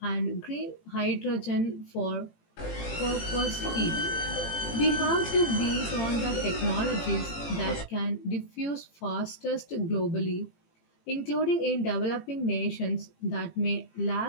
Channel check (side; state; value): right; late; 18 ms